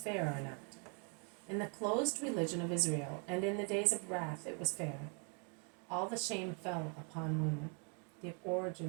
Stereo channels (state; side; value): quieter; left; 38.7 dB